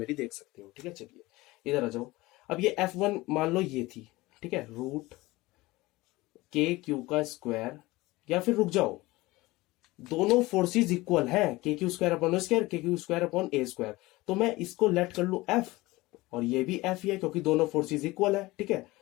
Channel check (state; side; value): quieter; right; 20.3 dB